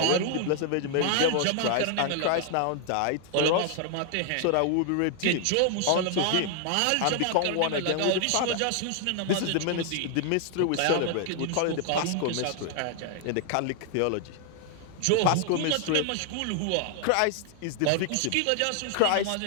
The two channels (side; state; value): both; different; correlation 0.00